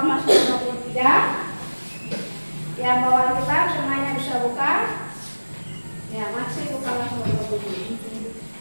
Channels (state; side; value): inverted; both; correlation -1.00